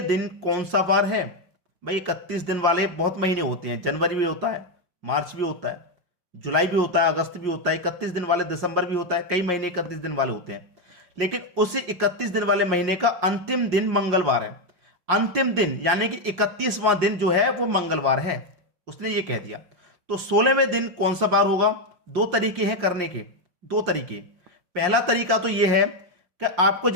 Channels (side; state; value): left; late; 5.6 ms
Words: दिन कौन सा वार है? भाई 31 दिन वाले बहुत महीने होते हैं, जनवरी भी होता है, मार्च भी होता है, जुलाई भी होता है, अगस्त भी होता है। 31 दिन वाले दिसंबर भी होता है, कई महीने 31 दिन वाले होते हैं, लेकिन उसी 31 दिन वाले महीने का अंतिम दिन मंगलवार है। अंतिम दिन यानी कि 31वां दिन जो है वो मंगलवार है, उसने ये कह दिया। तो 16वें दिन कौन सा बार होगा? 2 तरीके हैं करने के, 2 तरीके। पहला तरीका तो ये है कि आपको